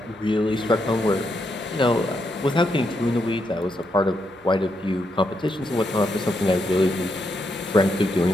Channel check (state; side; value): normal; both; correlation 0.80